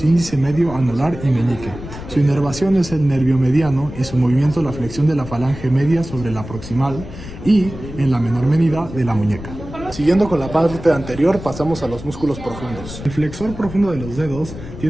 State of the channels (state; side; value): noise; left; rumble, 12 dB below the sound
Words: índice, medio, anular y meñique. Su inervación es el nervio mediano y su movimiento la flexión de la falange media sobre la proximal y, en la menor medida, de la muñeca. Siguiendo con la parte anterior, pasamos a los músculos profundos. El flexor profundo de los dedos